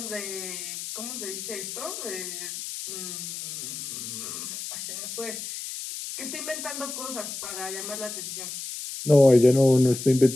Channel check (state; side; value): noise; left; hiss, 7 dB below the sound